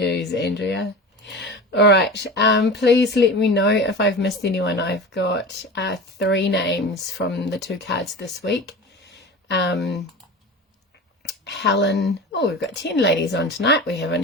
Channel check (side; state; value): both; normal; correlation 0.33